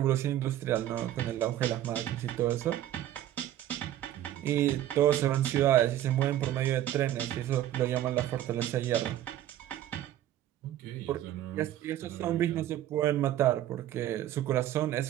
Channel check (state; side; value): quieter; left; 12.6 dB